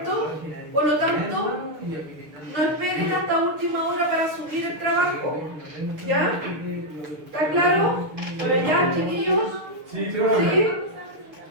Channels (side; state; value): left; late; 6.6 ms